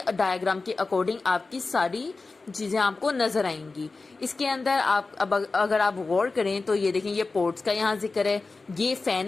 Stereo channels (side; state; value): right; quieter; 3.8 dB